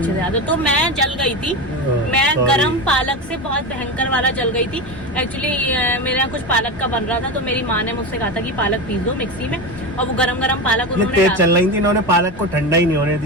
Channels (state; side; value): normal; both; correlation 0.20